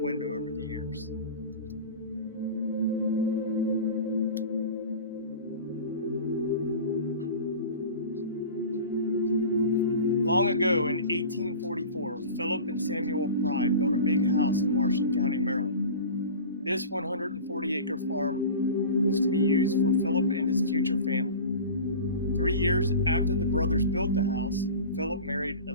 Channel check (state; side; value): inverted; both; correlation -0.35